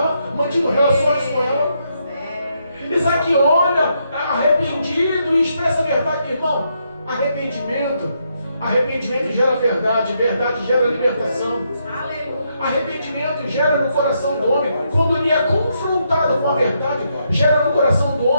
mantido relações com ela? Isaac olha arrependido e expressa a verdade. Irmão, arrependimento Arrependimento gera verdade, verdade gera libertação. Aleluia. Arrependimento gera no coração do homem, quando ele é confrontado com a verdade, gera no coração do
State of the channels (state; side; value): inverted; both; correlation -0.78